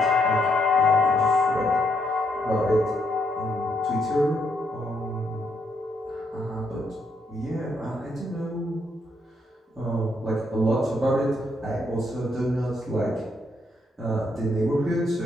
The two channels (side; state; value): both; normal; correlation 0.75